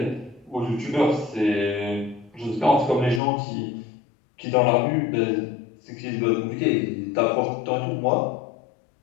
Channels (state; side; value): drops out; right; at 3.2 s